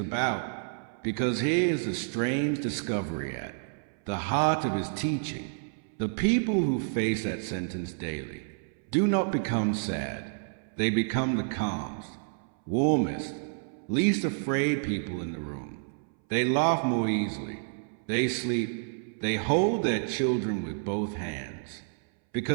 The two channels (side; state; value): left; silent; 58 dB below the other